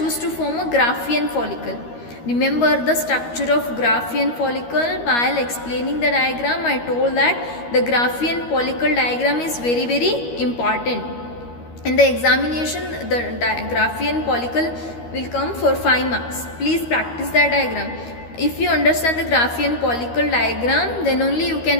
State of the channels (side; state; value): right; late; 13 ms